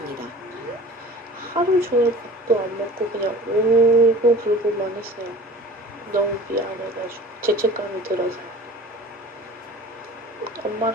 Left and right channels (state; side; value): normal; both; correlation 0.42